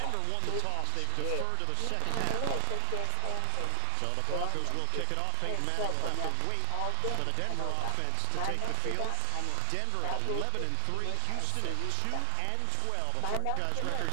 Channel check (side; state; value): both; different; correlation 0.00